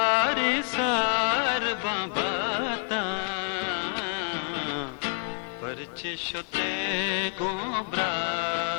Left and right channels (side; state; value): right; quieter; 36.1 dB